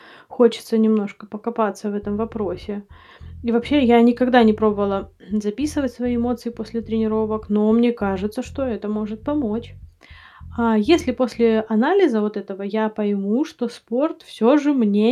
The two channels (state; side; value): identical; both; correlation 1.00